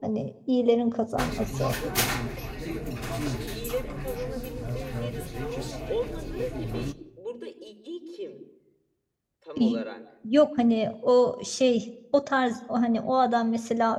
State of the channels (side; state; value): both; identical; correlation 1.00